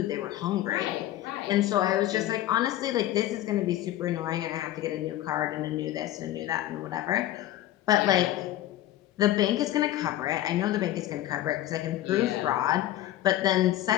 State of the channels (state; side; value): quieter; right; 13.8 dB